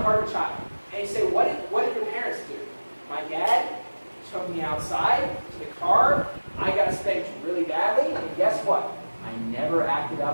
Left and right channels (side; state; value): both; inverted; correlation -1.00